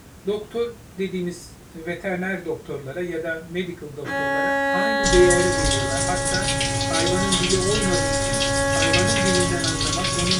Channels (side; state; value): both; identical; correlation 1.00